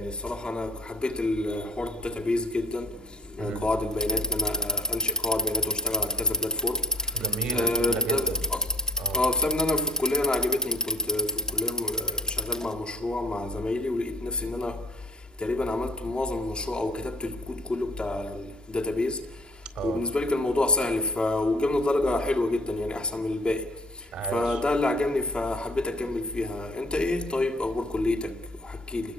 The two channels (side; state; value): both; normal; correlation 0.51